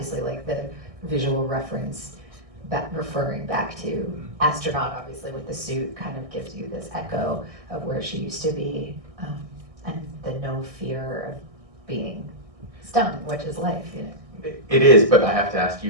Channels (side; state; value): left; late; 1.6 ms